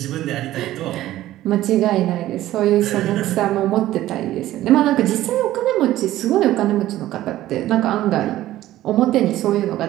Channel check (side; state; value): left; quieter; 14.6 dB